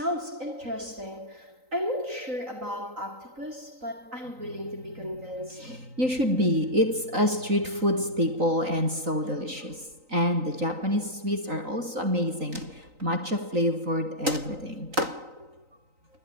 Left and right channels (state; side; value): late; left; 3.9 ms